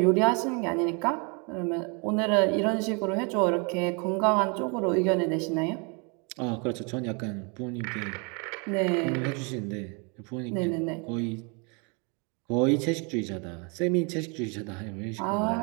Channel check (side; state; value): left; quieter; 33.4 dB